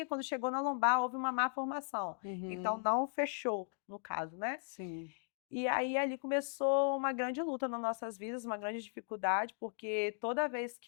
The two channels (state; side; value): silent; right; digital silence